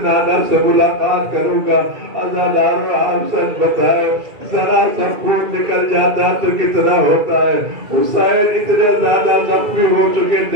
نانا سے ملاقات کروں گا۔ عزادار آپ سچ بتائے ذرا سا خون نکل جاتا تو کتنا ہوتا ہے۔ حسین اتنے زیادہ زخمی ہو چکے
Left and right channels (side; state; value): left; late; 2.3 ms